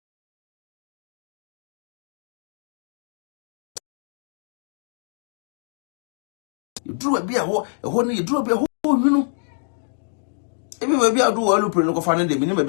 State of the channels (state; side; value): silent; right; digital silence